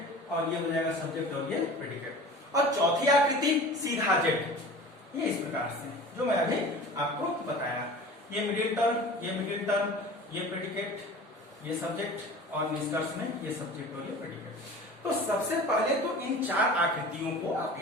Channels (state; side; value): normal; both; correlation 0.39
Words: और ये हो जाएगा सब्जेक्ट और ये प्रेडिकेट। और चौथी आकृति सीधा जेड, ये इस प्रकार से जो मैं अभी आपको बताया, ये मिडिल टर्म, ये मिडिल टर्म, ये प्रेडिकेट, ये सब्जेक्ट, और निष्कर्ष में ये सब्जेक्ट और ये प्रेडिकेट। तो सबसे पहले तो इन 4 आकृतियों को आप